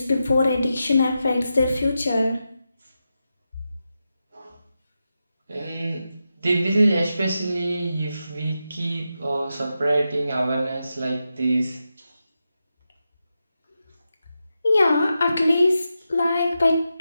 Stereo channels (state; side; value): inverted; both; correlation -0.89